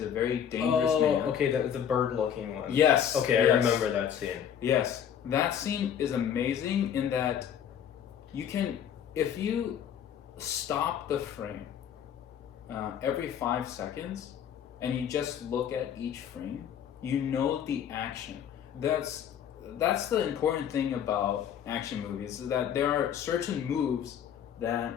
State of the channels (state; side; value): quieter; right; 9.0 dB